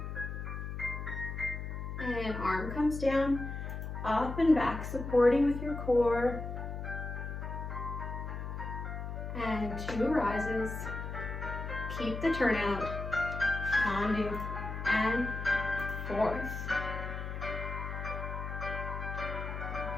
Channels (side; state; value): left; noise; hum, 6 dB below the sound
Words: And arm comes down, up and back, supporting with your core. And 2 rises. Keep the turnout. Tendu, and 4th.